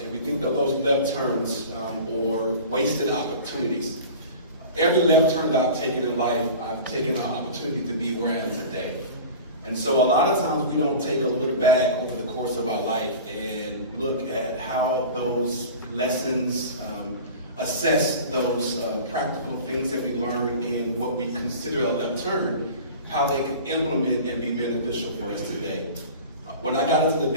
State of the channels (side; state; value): both; inverted; correlation -0.37